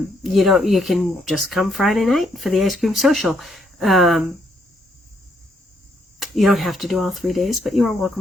can just come Friday night for the ice cream social. You don't have to do all 3 days, but you are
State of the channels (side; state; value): both; normal; correlation 0.73